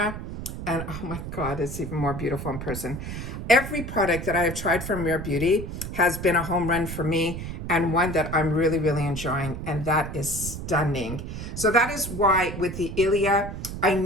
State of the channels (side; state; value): right; noise; rumble, 7 dB below the sound